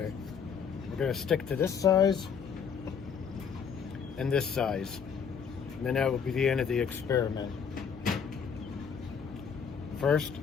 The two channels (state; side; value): quieter; right; 6.8 dB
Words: we're going to stick to this size and this size, and then that will be the end of the experiment. First,